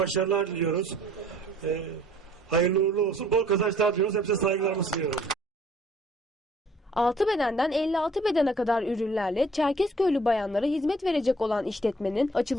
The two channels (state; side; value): normal; both; correlation 0.57